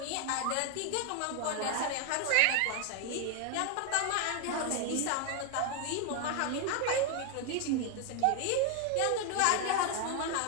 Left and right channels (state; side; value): different; both; correlation 0.01